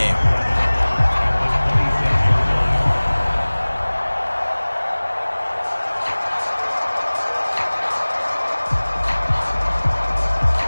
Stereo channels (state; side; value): inverted; both; correlation -1.00